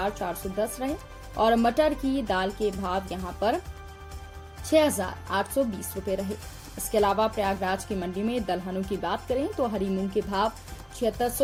रहे और मटर की दाल के भाव यहां पर 6820 रुपए रहे। इसके अलावा प्रयागराज की मंडी में दलहनों की बात करें तो हरी मूंग के भाव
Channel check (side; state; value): both; identical; correlation 1.00